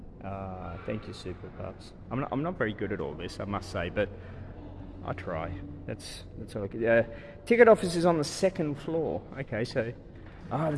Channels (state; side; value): identical; both; correlation 1.00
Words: Thank you, Super Pups. I'm not very good at all this, I must say, but I try. That's all I can. Ticket office is on the second floor. Okay, so the